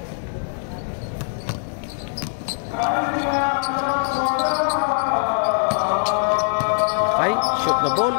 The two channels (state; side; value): silent; right; 64 dB below the other